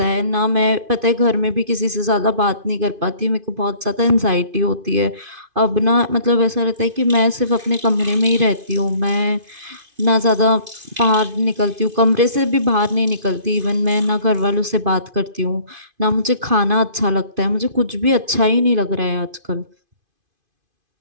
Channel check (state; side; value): late; left; 2.5 ms